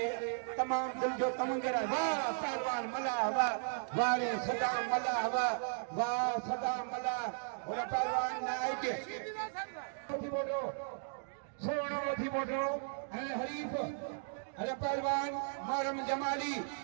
तमाम दिल जो तमंगे रहा वाह पहलवान मला वाह वाले सदाम मला वाह सदाम मला और पहलवान नायक थी बोलो सोनो थी बोलो अन हरीफ अरे पहलवान मरम जमाली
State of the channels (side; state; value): left; silent; digital silence